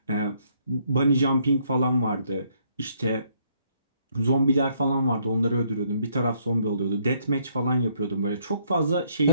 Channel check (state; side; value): inverted; both; correlation -0.69